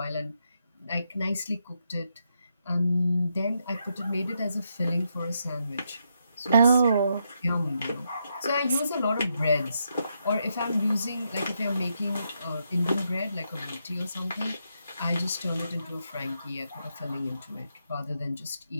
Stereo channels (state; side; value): inverted; both; correlation -0.81